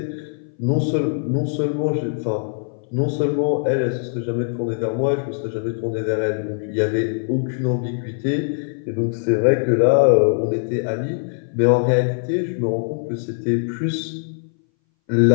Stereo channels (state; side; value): silent; right; 62 dB below the other